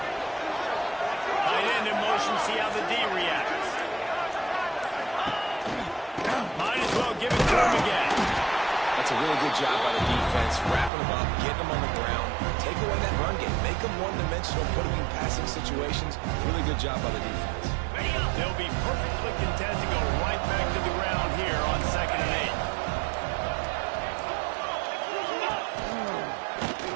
Tight end in motion, see how the D reacts. Might as well give it to him again. That's a really good job by the defense, wrapping them up, getting them on the ground, take away that run game, make them one-dimensional, put them in passing situations. Really good job by the defense. They'll be perfectly content to go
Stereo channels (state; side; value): drops out; left; at 10.9 s